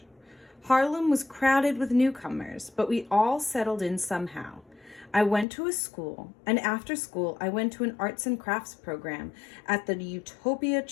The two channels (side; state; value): right; drops out; at 5.5 s